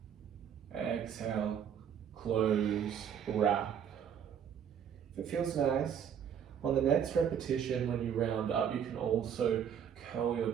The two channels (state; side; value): quieter; left; 8.4 dB